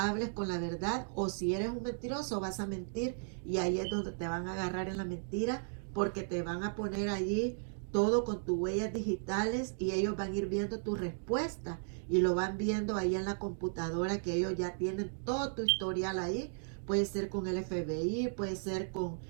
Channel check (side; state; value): left; silent; digital silence